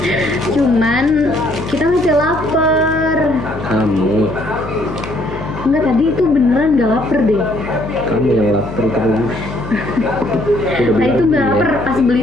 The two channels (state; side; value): noise; left; hum, 11 dB below the sound